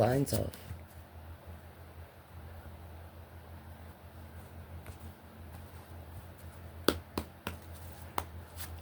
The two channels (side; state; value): both; identical; correlation 1.00